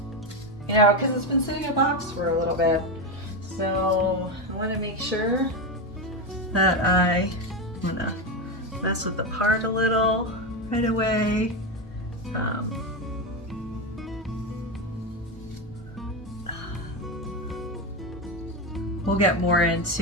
You know, because it's been sitting in a box for a little bit. So I wanna make sure that I'm gonna mess with the part a little right away. We'll get more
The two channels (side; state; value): both; normal; correlation 0.13